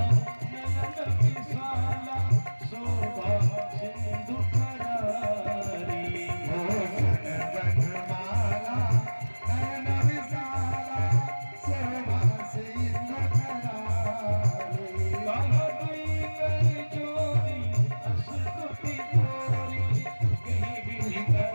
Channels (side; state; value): both; inverted; correlation -1.00